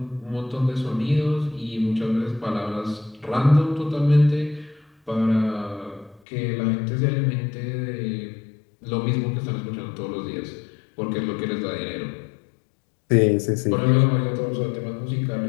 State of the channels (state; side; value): drops out; right; at 6.2 s